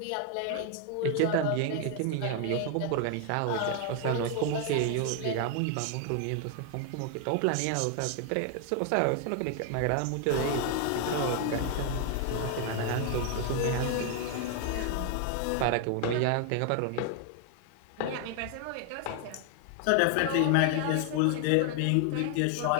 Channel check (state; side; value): different; both; correlation 0.00